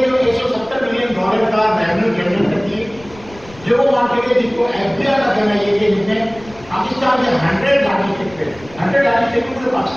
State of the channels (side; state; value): left; noise; rumble, 22 dB below the sound